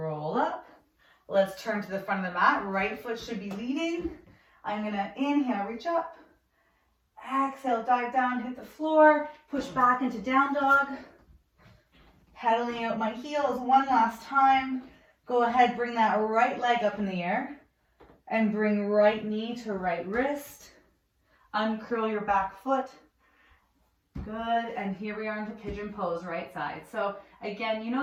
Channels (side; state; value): both; identical; correlation 1.00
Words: up. Let's turn to the front of the mat. Right foot should be leading. I'm going to inhale, reach up. Exhale, dive down, hit the floor. Push back into down dog. Pedaling out my heels one last time. Go ahead, bring that right leg up in the air. And bring right knee to right wrist. Uncurl your back foot. Good, and here we are into pigeon pose, right side. So again, you